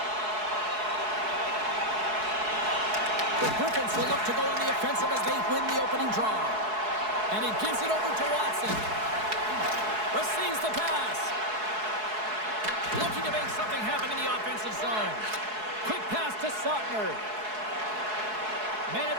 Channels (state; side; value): late; left; 4.7 ms